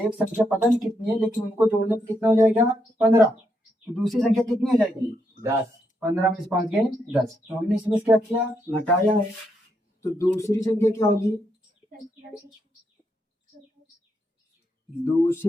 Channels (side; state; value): both; normal; correlation 0.79